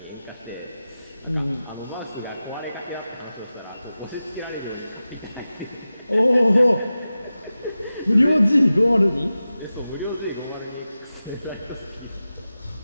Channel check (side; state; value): both; inverted; correlation -0.94